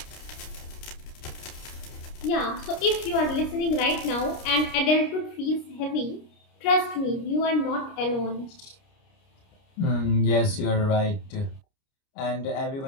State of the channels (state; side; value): late; right; 29 ms